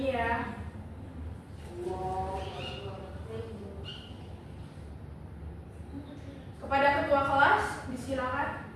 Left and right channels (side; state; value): both; identical; correlation 1.00